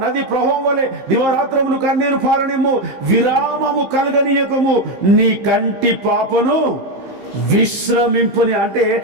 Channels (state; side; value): late; left; 15 ms